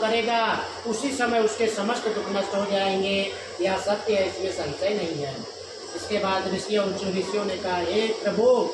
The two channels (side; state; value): both; identical; correlation 1.00